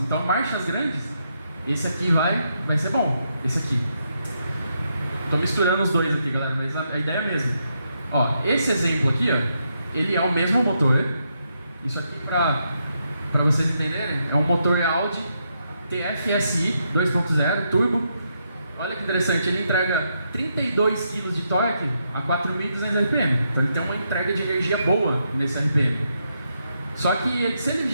marchas grandes, esse aqui vai ser bom, esse aqui. Estou misturando os dois aqui, galera, mas a ideia é a mesma. Ó, esse exemplo aqui, ó, ele é o mesmo motor. Isso aqui, para vocês entenderem, é um motor Audi TFSI 2.0 turbo. Olha que interessante, ele entrega 32 kg de torque a 4.200 RPM. Então ele tem uma entrega de energia boa nesse RPM. Só que se ele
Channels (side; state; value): both; inverted; correlation -0.80